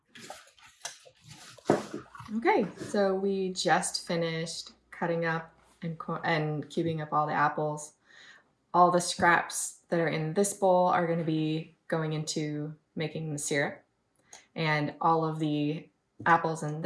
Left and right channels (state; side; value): identical; both; correlation 1.00